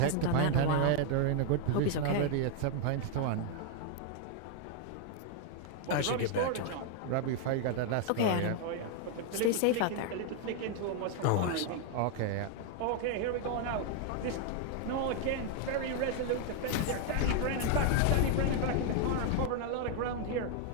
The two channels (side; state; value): both; different; correlation 0.00